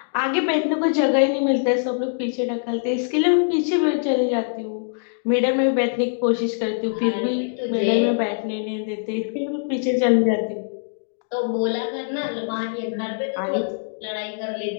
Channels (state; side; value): silent; right; digital silence